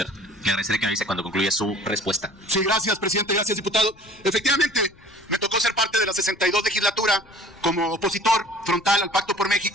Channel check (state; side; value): noise; left; rumble, 27 dB below the sound